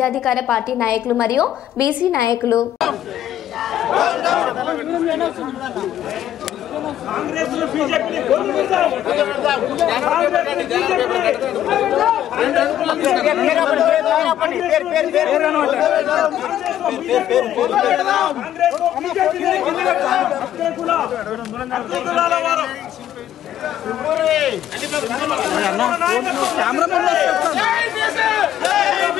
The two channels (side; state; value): right; quieter; 11.6 dB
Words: పార్టీ నాయకులు మరియు బీసీ నాయకులు.